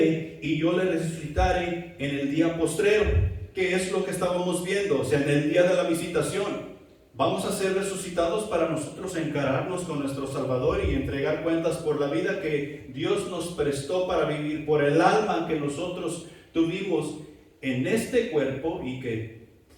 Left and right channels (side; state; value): both; identical; correlation 1.00